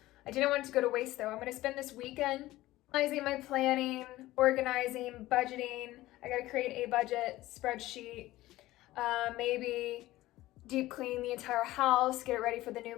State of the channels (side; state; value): right; quieter; 16.9 dB